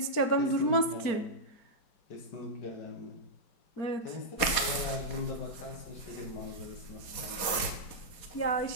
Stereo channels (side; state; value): right; late; 4.3 ms